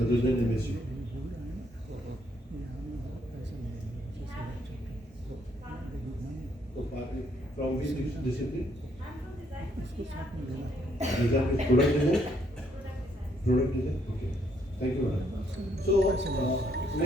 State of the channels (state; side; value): normal; both; correlation 0.71